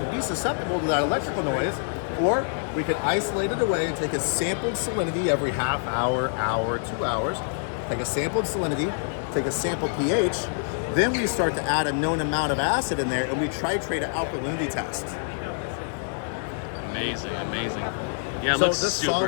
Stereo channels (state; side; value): silent; right; digital silence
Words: be susceptible to that electrical noise, or we can isolate it away and take a sampled salinity every half hour, 2 hours, take a sampled salinity, take a sampled pH, then we start to add a known amount of acid in there and we titrate an alkalinity test. Amazing. Yeah, it so looks this super